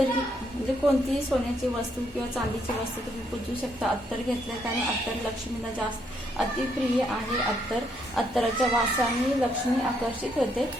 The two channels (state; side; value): normal; both; correlation 0.73